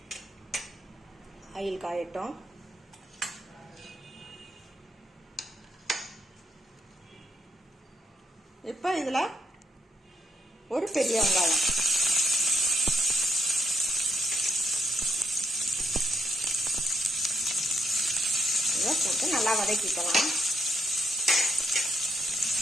ஆயில் காயட்டும். இப்போ இதுல ஒரு பெரிய வெங்காயம், இதை போட்டு நல்லா வதக்கிக்கலாம்.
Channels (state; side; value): normal; both; correlation 0.79